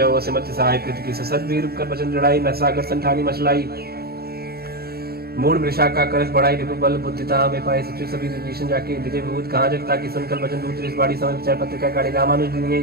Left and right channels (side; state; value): left; late; 0.45 ms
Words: असिमत सहाय कृत की सदवीर कर भजन जड़ाई न सागर संठानी मचलाई मूड वृषा का करस बढ़ाई रिपु बल बुद्धिता में पाए सचिव सभी विभीषण जाके विजय विभूत कहाँ जगता की सुनकर भजन दूत इस बाड़ी समय विचार पत्रिका काढ़ी रामानुज